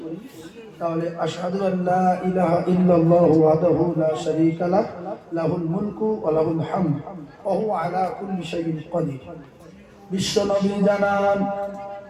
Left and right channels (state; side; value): identical; both; correlation 1.00